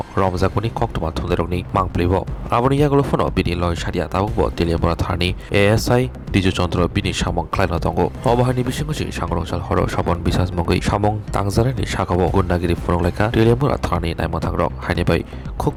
रमजागुनि कक्तमा थुंदेरकनि मांप्लेबो आबनि यागलो फनो बिनि लय सारिया ताबुकबो तेलियामुरा थारनि एएसआई डिजु चन्द्र बिनि सामं क्लाइनो दंगो अबाहानि बिसिंगसि सांग्रंसाल हर सबन बिसास मंगै सामं तांजानायनि साखाव गुन्डागिरि फुनंलाइखा तेलियामुरा थारनि नायमथांग्रक हायनिबाय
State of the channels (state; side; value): identical; both; correlation 1.00